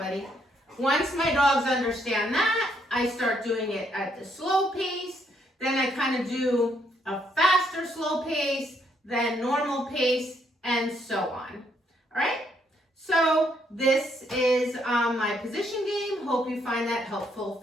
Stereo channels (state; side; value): normal; both; correlation 0.72